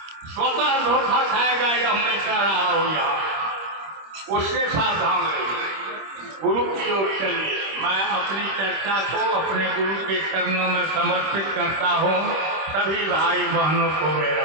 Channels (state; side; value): late; left; 26 ms